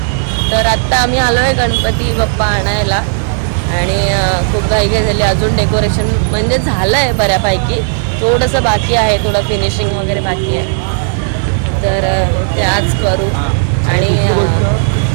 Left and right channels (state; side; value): silent; left; digital silence